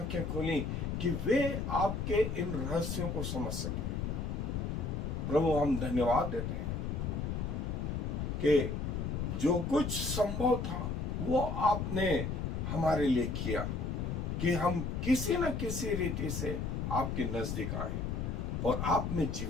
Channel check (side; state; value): left; noise; rumble, 2 dB below the sound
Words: खोली कि वे आपके इन रहस्यों को समझ सकें। प्रभु हम धन्यवाद देते हैं कि जो कुछ संभव था वो आपने हमारे लिए किया कि हम किसी न किसी रीति से आपके नजदीक आए और आप में